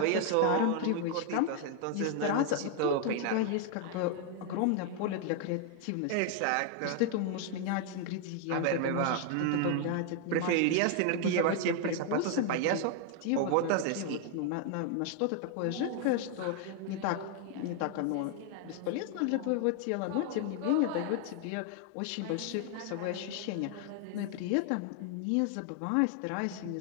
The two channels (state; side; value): different; both; correlation 0.00